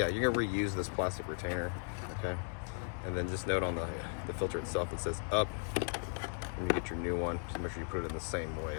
you're gonna reuse this plastic retainer, okay? And then just note on the filter itself, it says up. When you get your new one, just make sure you put it in the same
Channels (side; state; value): right; silent; 53 dB below the other